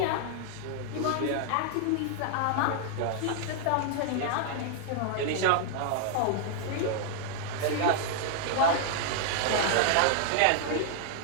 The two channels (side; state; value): both; different; correlation -0.01